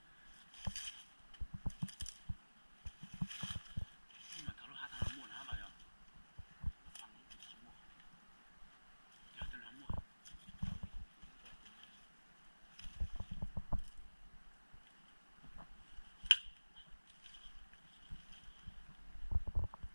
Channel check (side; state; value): both; inverted; correlation -1.00